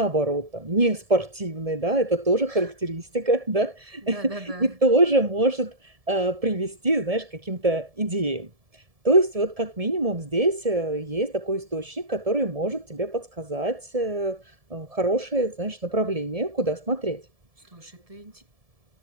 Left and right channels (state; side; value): late; left; 1.7 ms